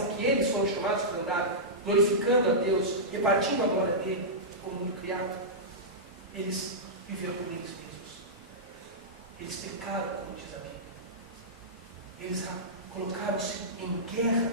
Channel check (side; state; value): both; normal; correlation -0.14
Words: que eles foram chamados para andar, glorificando a Deus, repartindo a glória dele como mundo criado, eles viveram por eles mesmos. Eles pecaram, como diz a Bíblia. Eles colocaram-se em guerra